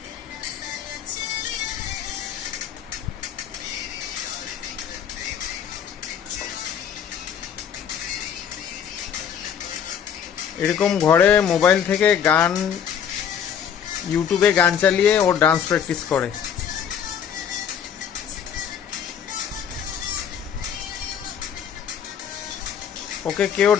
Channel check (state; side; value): quieter; right; 8.3 dB